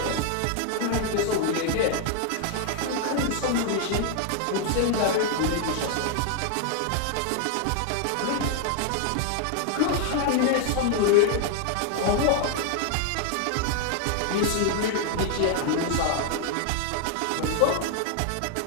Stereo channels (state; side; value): different; both; correlation 0.00